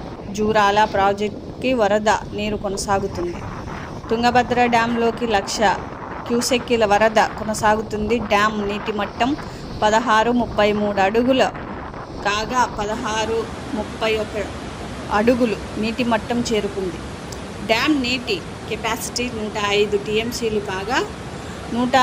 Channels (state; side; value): identical; both; correlation 1.00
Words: జూరాల ప్రాజెక్టుకి వరద నీరు కొనసాగుతుంది. తుంగభద్ర డ్యాంలోకి 1,00,000 క్యూసెక్కుల వరద కొనసాగుతుంది. డ్యామ్ నీటి మట్టం 16.33 అడుగులు కాగా 16.31 అడుగులు నీటి మట్టం చేరుకుంది. డ్యామ్ నీటి కెపాసిటీ 105 టీఎంసీలు కాగా